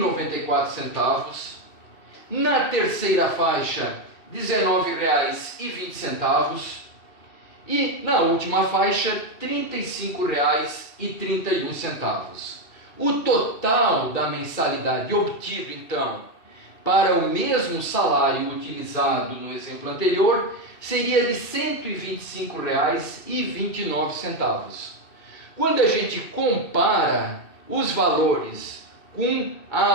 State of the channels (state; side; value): late; right; 2.7 ms